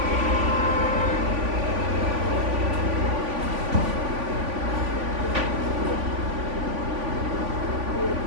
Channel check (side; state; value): left; late; 3.5 ms